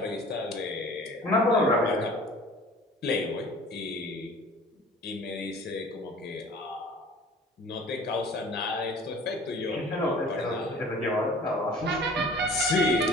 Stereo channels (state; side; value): normal; both; correlation 0.46